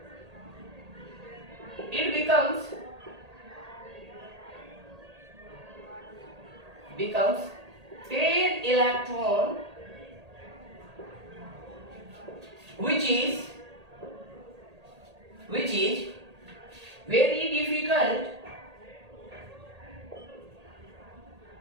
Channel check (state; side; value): late; left; 1.8 ms